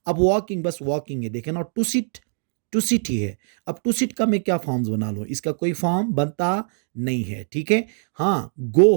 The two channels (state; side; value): silent; left; digital silence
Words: अब वॉकिंग बस वॉकिंग है, देखें ना, टू सिट ही है। अब टू सिट का मैं क्या फॉर्म्स बना लूँ, इसका कोई फॉर्म बनता नहीं है। ठीक है, हाँ, गो